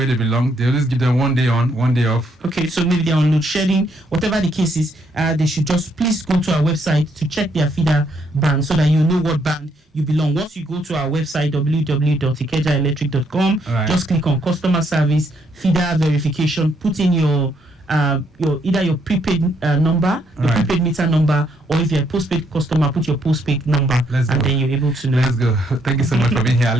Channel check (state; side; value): normal; both; correlation 0.72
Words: they belong. They always give them 1 day on, 1 day off. Okay, so maybe they're on load shedding. Whatever the case is, they should just please go to our website to check their feeder band so that you know what band you belong. Once you go to our website, www.ikejaelectric.com, just click on customer service, feeder verification, put in your either your prepaid number, your prepaid meter number, or if you're a postpaid customer, put your postpaid number, then you're able to know. Let's go. Thank you so much for being here,